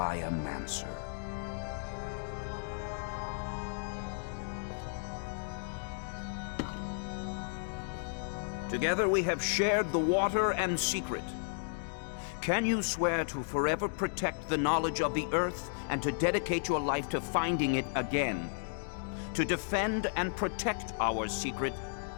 Mancer. Together we have shared the water and secret. Can you swear to forever protect the knowledge of the Earth and to dedicate your life to finding it again? To defend and protect our secret,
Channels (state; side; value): silent; right; digital silence